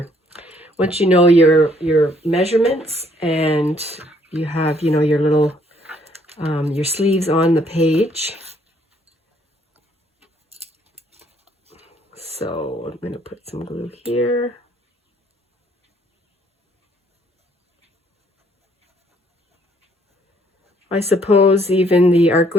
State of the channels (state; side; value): normal; both; correlation 0.65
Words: once you know your measurements and you have, you know, your little your sleeves on the page. So I'm going to put some glue here. I suppose even the art